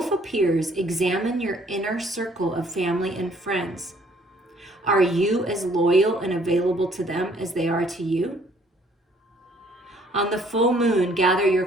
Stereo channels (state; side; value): normal; both; correlation 0.62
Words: appears, examine your inner circle of family and friends. Are you as loyal and available to them as they are to you? On the full moon, gather your